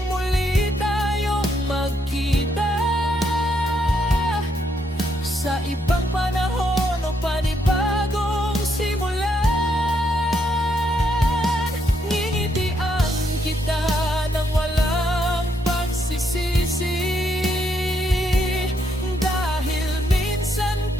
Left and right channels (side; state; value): both; normal; correlation 0.75